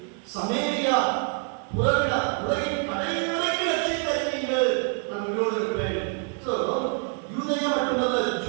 சமேரியா புறவிடா உலகின் கடைசி வரைக்கும் ரட்சித்து அறிவீர்கள், நான் உங்களோடு இருப்பேன். சோ யூதேயா மட்டுமல்ல,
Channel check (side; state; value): left; quieter; 39.6 dB